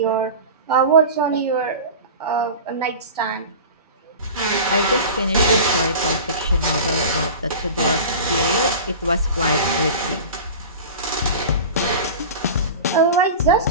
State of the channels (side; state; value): both; inverted; correlation -0.33